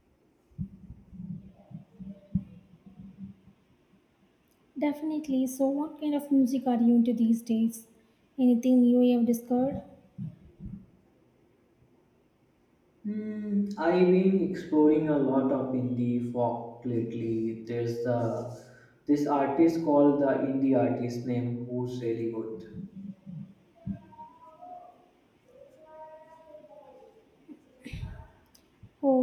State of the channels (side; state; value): both; identical; correlation 1.00